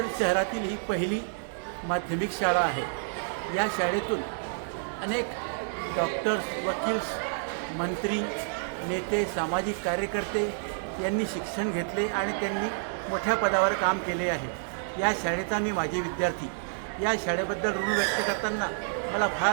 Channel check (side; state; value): left; silent; 59 dB below the other